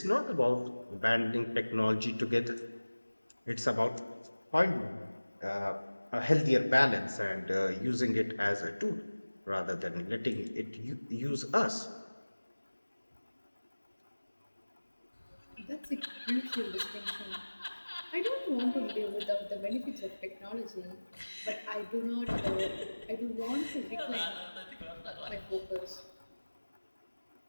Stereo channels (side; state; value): both; inverted; correlation -1.00